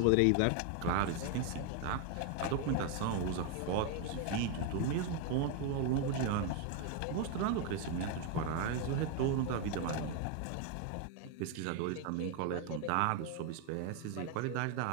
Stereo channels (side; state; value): both; different; correlation 0.01